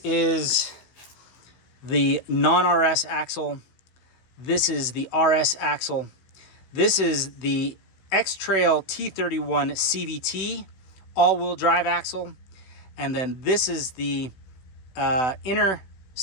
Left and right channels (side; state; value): right; late; 16 ms